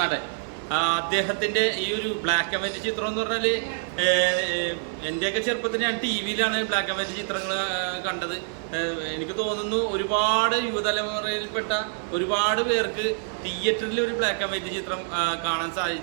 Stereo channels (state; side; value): silent; left; digital silence